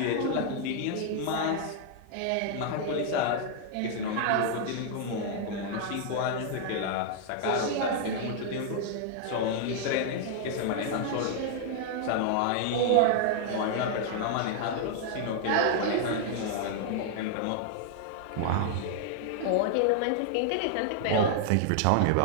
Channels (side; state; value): both; different; correlation -0.01